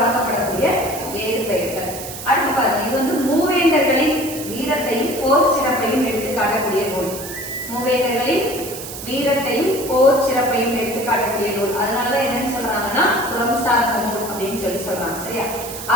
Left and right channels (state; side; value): noise; right; hiss, 10 dB below the sound